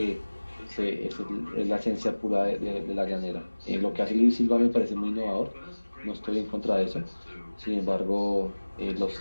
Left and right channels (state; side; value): inverted; both; correlation -1.00